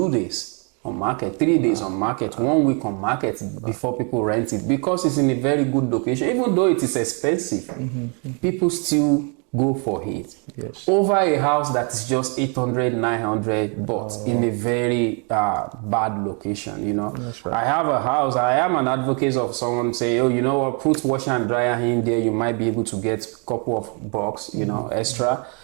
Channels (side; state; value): left; quieter; 37.2 dB